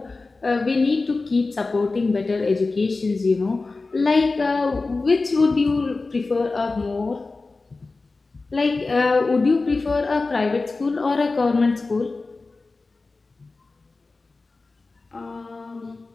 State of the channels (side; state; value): right; quieter; 3.7 dB